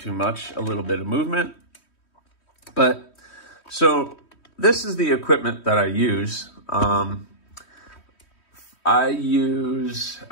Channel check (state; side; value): late; right; 3.1 ms